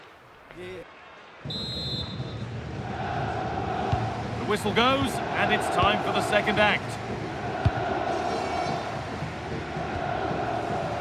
The whistle goes, and it's time for the second act.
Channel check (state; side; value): identical; both; correlation 1.00